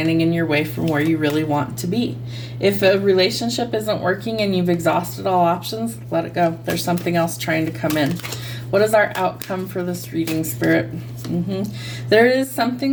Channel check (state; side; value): identical; both; correlation 1.00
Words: in your way from where you really want to be. If a relationship isn't working and you've exhausted all options, let it go. There's something else trying to come in. What is our outcome for this reading, Spirit? There is